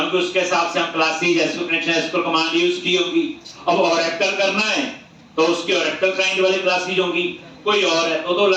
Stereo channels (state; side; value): identical; both; correlation 1.00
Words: उसके हिसाब से हम classes SQL connection SQL command use की होगी। अब ओरेकल करना है तो उसकी ओरेकल क्लाइंट वाली क्लासेस होंगी, कोई और है तो